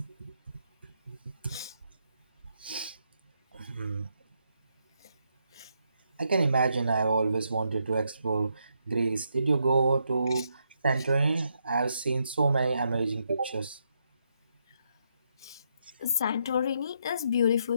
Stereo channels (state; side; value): inverted; both; correlation -0.79